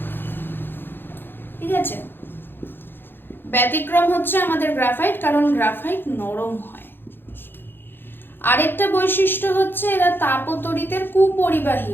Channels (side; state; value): right; late; 0.10 ms